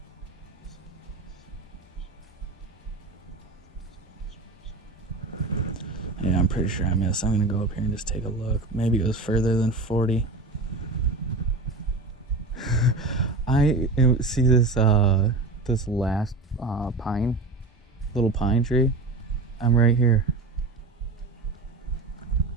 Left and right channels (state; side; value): quieter; left; 3.3 dB